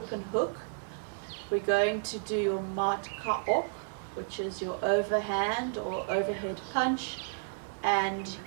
hook. We're going to do your mat kaop, which is your overhand or overhead punch, and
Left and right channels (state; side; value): silent; left; digital silence